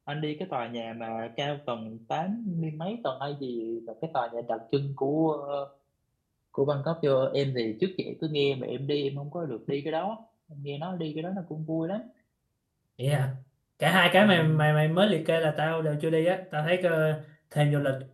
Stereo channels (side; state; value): both; identical; correlation 1.00